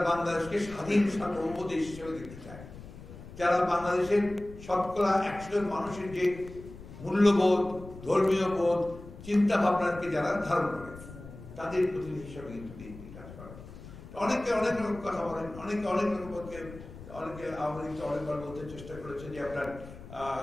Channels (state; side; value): noise; left; rumble, 15 dB below the sound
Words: বাংলাদেশকে স্বাধীন সার্বভৌম দেশ হিসেবে দেখতে চায়, যারা বাংলাদেশের শতকরা 100 জন মানুষের যে মূল্যবোধ, ধর্মীয় বোধ, চিন্তা ভাবনাকে যারা ধারণ করে, তাদের প্রতিনিধি হিসাবে কিন্তু বিএনপি কাজ করে। অনেকে অনেক রকম কথা বলেন, অনেকে অনেক রকম, অনেকে আওয়ামী লীগকে অনেকবার বলতে চেষ্টা করেছে যে আপনার